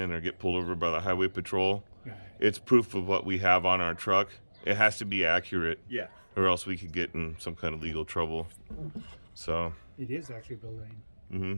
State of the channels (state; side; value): inverted; both; correlation -1.00